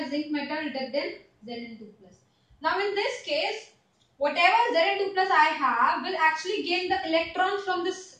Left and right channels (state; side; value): identical; both; correlation 1.00